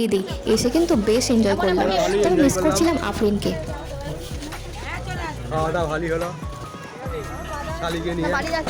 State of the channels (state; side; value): identical; both; correlation 1.00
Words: দিই, এসে কিন্তু বেশ এনজয় করলাম। তবে মিস করছিলাম আফরিনকে। খাওয়া দাওয়া ভালোই হলো, শালিকে নিয়ে